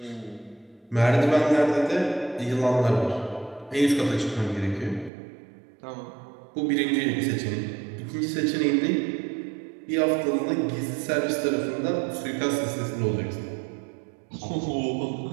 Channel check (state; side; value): drops out; left; at 5.1 s